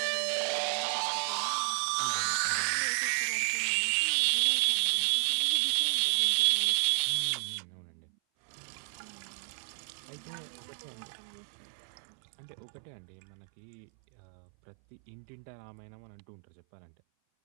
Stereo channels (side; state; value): left; silent; 56 dB below the other